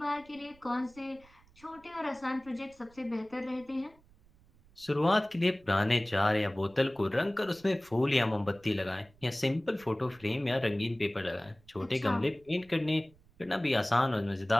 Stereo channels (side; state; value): right; noise; rumble, 28 dB below the sound